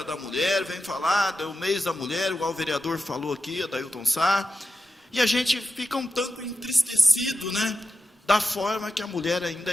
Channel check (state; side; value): normal; both; correlation 0.90